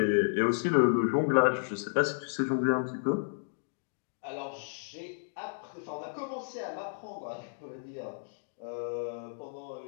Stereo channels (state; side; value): silent; right; digital silence